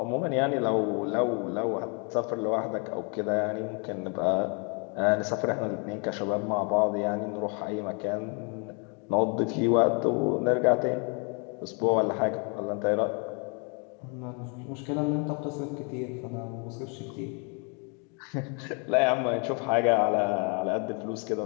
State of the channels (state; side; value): quieter; right; 35.9 dB